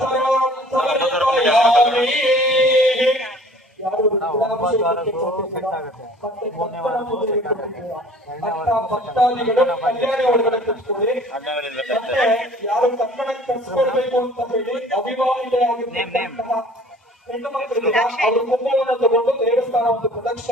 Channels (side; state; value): both; normal; correlation 0.50